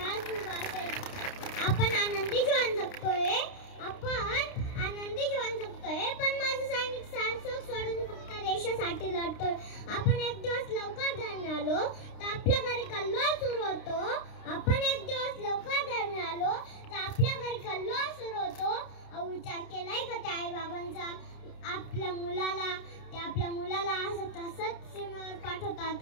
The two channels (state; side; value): late; right; 29 ms